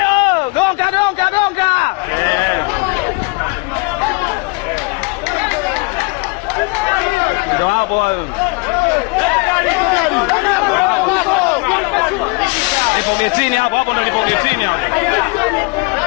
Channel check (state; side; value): quieter; right; 29.2 dB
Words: gonga. Ndio hapo wao. Getini hapo ndio nipo getini hapo.